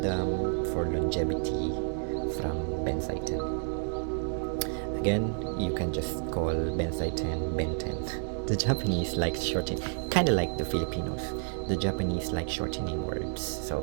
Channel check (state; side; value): silent; left; 58 dB below the other